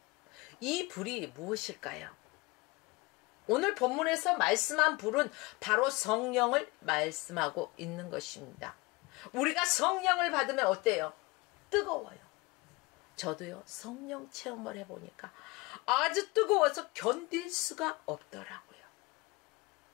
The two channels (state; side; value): quieter; right; 24.4 dB